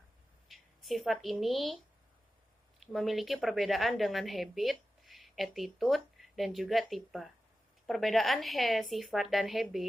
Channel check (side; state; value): both; normal; correlation 0.93